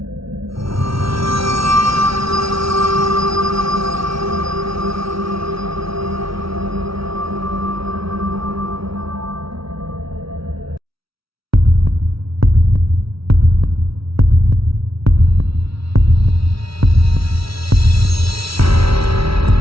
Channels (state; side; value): late; left; 0.75 ms